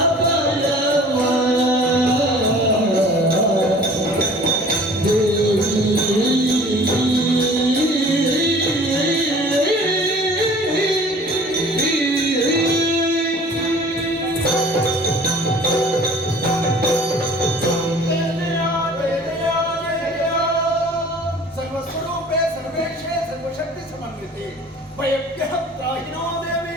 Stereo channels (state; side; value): normal; both; correlation 0.47